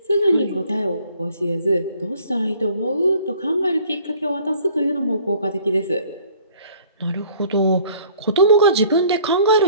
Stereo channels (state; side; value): inverted; both; correlation -0.55